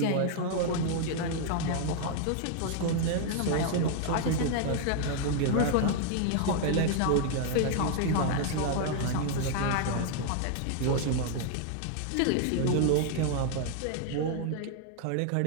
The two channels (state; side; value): different; both; correlation 0.00